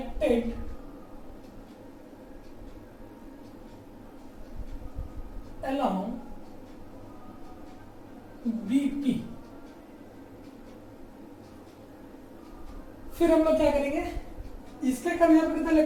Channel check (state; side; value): identical; both; correlation 1.00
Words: अलोंग BP। फिर हम लोग क्या करेंगे, इसके कारण यहाँ पर कितना